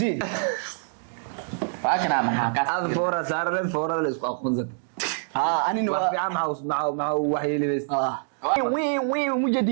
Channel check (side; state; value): left; silent; digital silence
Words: فاكر محاكاة aad foora saarleen foorada la isku aqoonsan ها انا wax fiican maxaa wax yeelibays وين وين